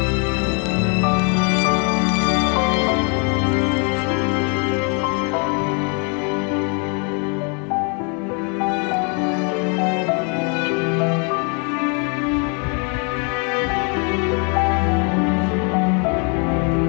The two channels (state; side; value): quieter; right; 36.6 dB